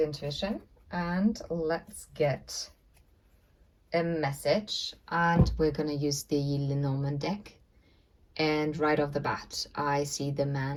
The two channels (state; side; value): identical; both; correlation 1.00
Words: Intuition, and let's get a message. And we're going to use the Lenormand deck. And right off the bat, I see the